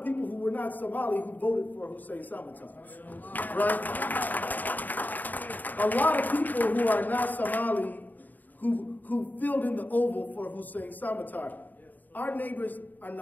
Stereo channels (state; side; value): late; right; 0.085 ms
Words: people who were not Somali who voted for Hussein Samatar, right? A lot of people who are not Somali who filled in the oval for Hussein Samatar. Our neighbors are